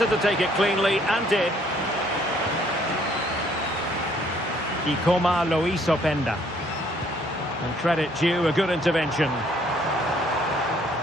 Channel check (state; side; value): normal; both; correlation 0.63